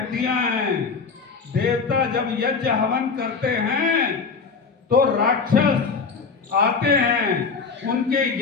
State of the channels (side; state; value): right; quieter; 5.0 dB